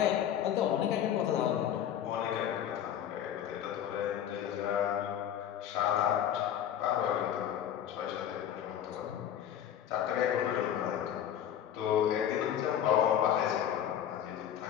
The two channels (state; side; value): quieter; right; 10.1 dB